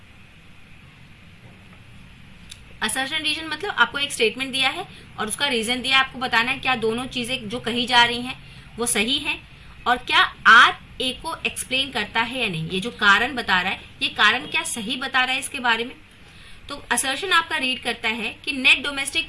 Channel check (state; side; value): identical; both; correlation 1.00